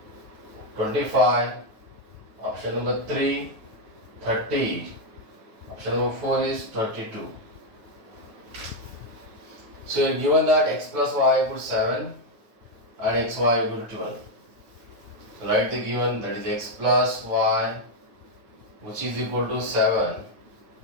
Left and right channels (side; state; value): left; late; 9.4 ms